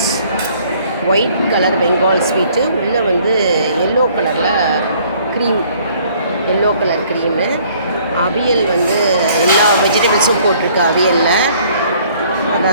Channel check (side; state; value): both; inverted; correlation -0.59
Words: white colour Bengal sweet, உள்ளே வந்து எல்லோ கலரில் க்ரீம், எல்லோ கலர் க்ரீமு. அவியல் வந்து எல்லா வெஜிடபிள்ஸும் போட்டிருக்கு அவியலில்,